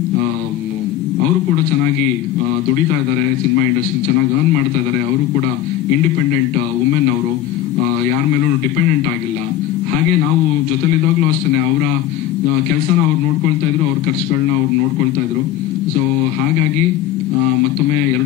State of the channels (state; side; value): quieter; right; 12.0 dB